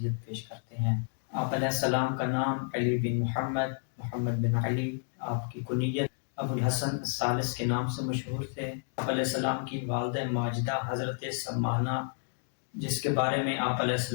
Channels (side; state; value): right; silent; digital silence